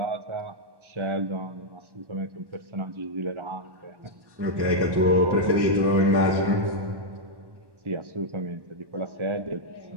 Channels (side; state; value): left; late; 1.1 ms